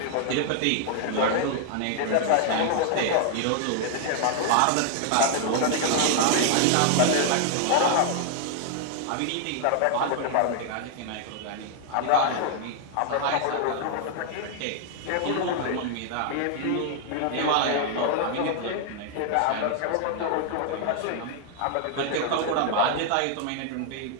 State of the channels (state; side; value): different; both; correlation 0.00